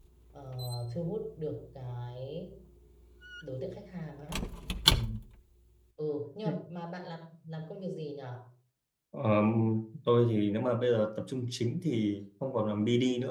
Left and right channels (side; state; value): both; identical; correlation 1.00